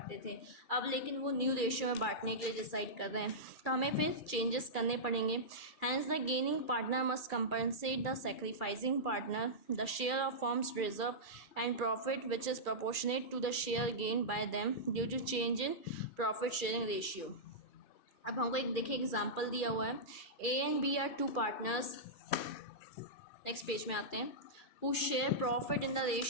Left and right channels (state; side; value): late; right; 2.4 ms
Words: थे, अब लेकिन वो न्यू रेशियो में बांटने के लिए डिसाइड कर रहे हैं, तो हमें फिर चेंजेस करने पड़ेंगे। Hence the gaining partner must compensate the sacrificing partner the share of firm's reserve and profit which is proportionate to the share gain by them due to change in profit sharing ratio. अब हमको एक देखिए example दिया हुआ है, A and B are 2 partners, next page में आते हैं, who share profit in the